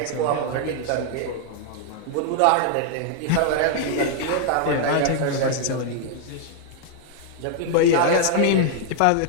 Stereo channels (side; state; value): both; different; correlation 0.00